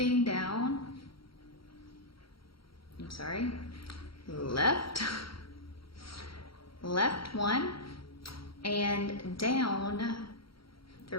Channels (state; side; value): late; right; 0.74 ms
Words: down. I'm sorry, left, left 1, and down